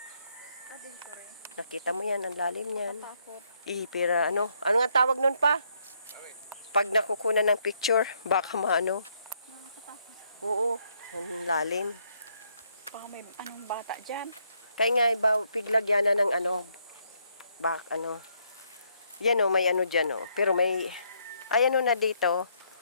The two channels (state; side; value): inverted; both; correlation -0.73